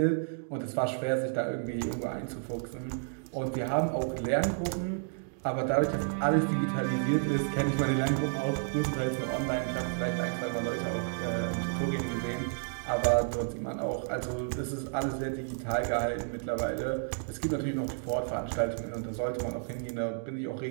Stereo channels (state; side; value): silent; left; digital silence